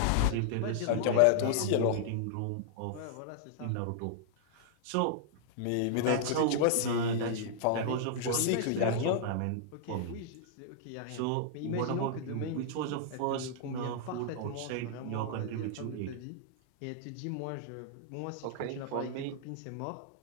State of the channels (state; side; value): different; both; correlation -0.01